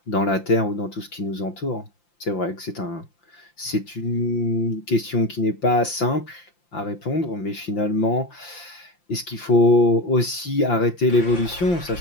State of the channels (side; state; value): right; late; 5.8 ms